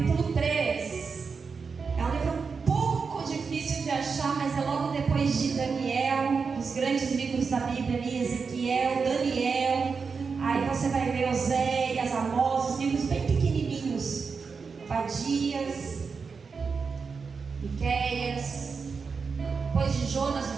3. É um livro um pouco difícil de achar, mas é logo depois de Daniel, os grandes livros da Bíblia ali, Ezequiel, Daniel. Aí você vai ver Oséias, Amós, os livros bem pequenininhos. Obadias, Miqueias, depois de Jonas,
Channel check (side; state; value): left; quieter; 5.2 dB